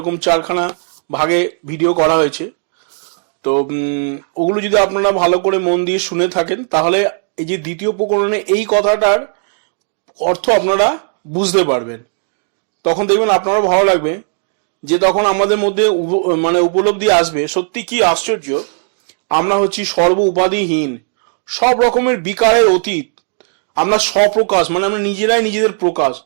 4খানা ভাগে ভিডিও করা হয়েছে। তো ওগুলো যদি আপনারা ভালো করে মন দিয়ে শুনে থাকেন, তাহলে এই যে দ্বিতীয় প্রকরণে এই কথাটার অর্থ আপনারা বুঝতে পারবেন। তখন দেখবেন আপনারও ভালো লাগবে, যে তখন আমাদের মধ্যে উপলব্ধি আসবে, সত্যি কি আশ্চর্য, আমরা হচ্ছি সর্ব উপাধিহীন, সব রকমের বিকারের অতীত, আমরা স্বপ্রকাশ আমরা নিজেরাই নিজেদের প্রকাশ,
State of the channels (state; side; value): silent; left; 63 dB below the other